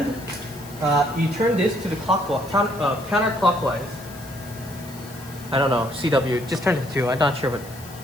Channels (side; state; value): left; noise; hiss, 19 dB below the sound